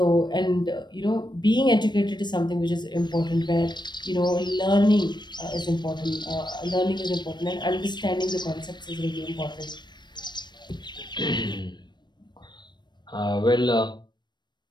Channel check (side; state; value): right; late; 0.22 ms